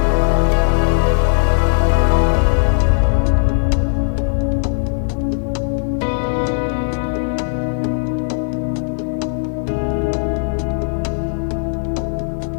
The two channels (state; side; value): silent; right; digital silence